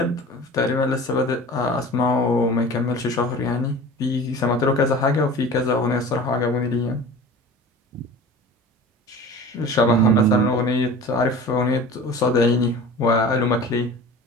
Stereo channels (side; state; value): both; normal; correlation 0.39